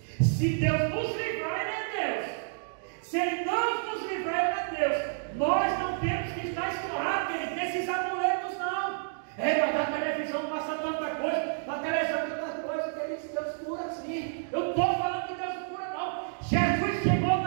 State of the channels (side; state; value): left; silent; digital silence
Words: se Deus nos livrar, Ele é Deus. Se Ele não nos livrar, Ele é Deus. Nós não temos que estar escorrados, querido, nesses amuletos, não. Mas na televisão passa tanta coisa, na televisão tanta coisa, que Deus cura assim. Eu estou falando que Deus cura, não. Jesus chegou